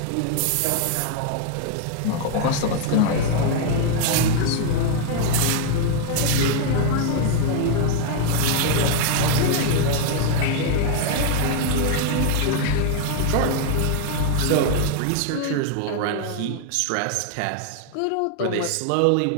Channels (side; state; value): both; different; correlation 0.00